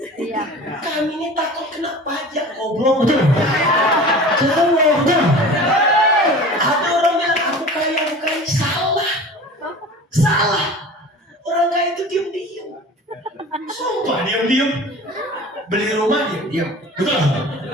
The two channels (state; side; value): normal; both; correlation 0.39